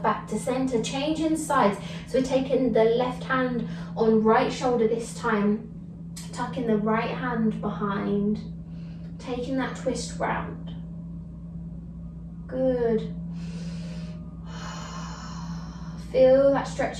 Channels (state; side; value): identical; both; correlation 1.00